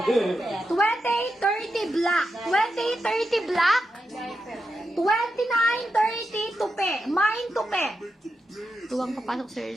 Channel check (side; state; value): both; normal; correlation 0.87